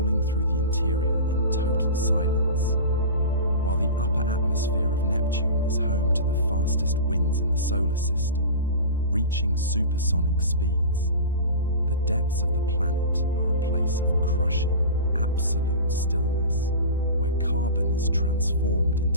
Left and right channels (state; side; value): inverted; both; correlation -0.32